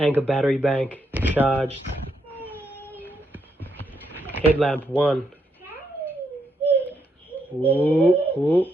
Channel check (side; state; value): both; normal; correlation 0.79